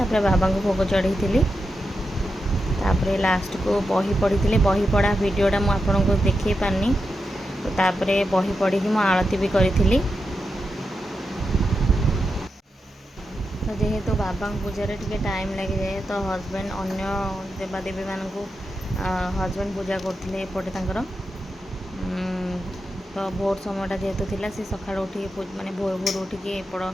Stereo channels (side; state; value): both; normal; correlation 0.88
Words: बाबा को भोग चढ़ी तापर लास्ट को बही पढ़ी बही पढ़ा वीडियोटा मुझे आपको देखे पारनी। तो तापर बही पढ़ी मु आरती भी करी। तो जेहेतु बाबा पूजा टे टाइम लगी जाए तो हजबैंड अन्य देवादेवी मान हजबैंड पूजा करते एपटे तर तो भोर समयटा जेहेतु थिला से सकाळ उठी माने भोर भोर उठिकी एपट